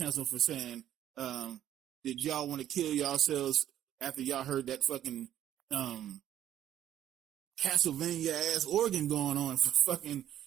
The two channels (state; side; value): quieter; left; 11.5 dB